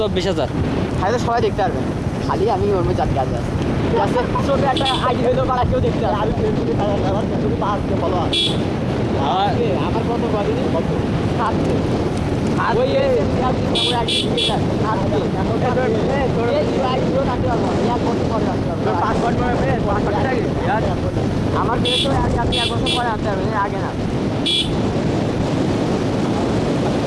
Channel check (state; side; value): identical; both; correlation 1.00